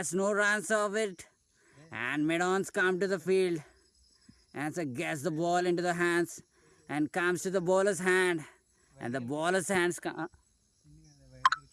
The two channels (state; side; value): identical; both; correlation 1.00